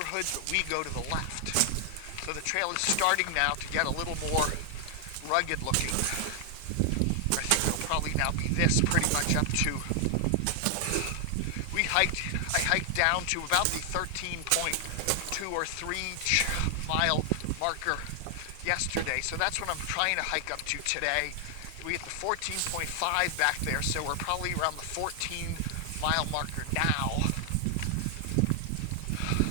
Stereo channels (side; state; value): both; different; correlation 0.00